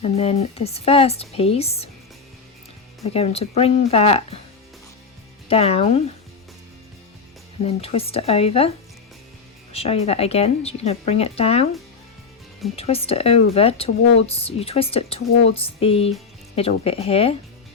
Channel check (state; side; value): quieter; right; 5.1 dB